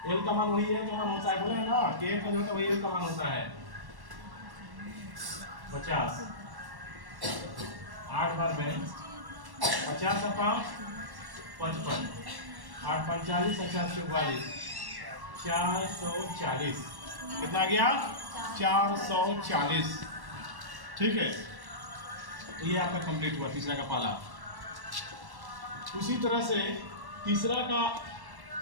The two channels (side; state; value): left; late; 1.1 ms